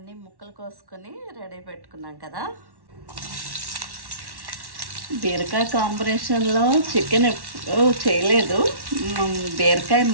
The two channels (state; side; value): late; left; 1.1 ms